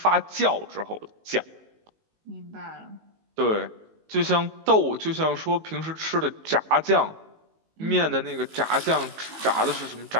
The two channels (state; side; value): late; left; 19 ms